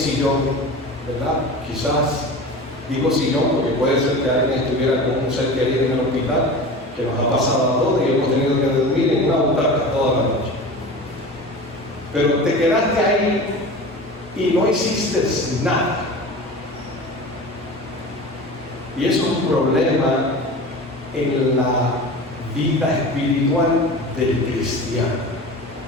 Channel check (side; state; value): both; normal; correlation 0.34